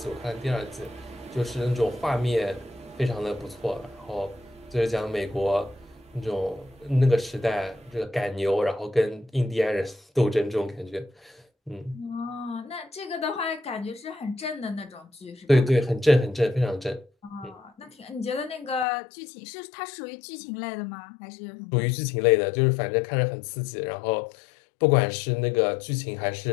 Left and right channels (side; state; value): right; drops out; at 18.9 s